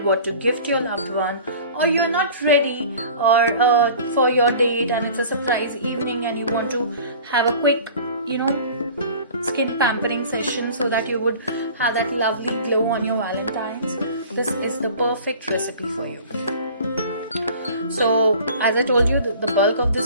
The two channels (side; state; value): both; inverted; correlation -0.44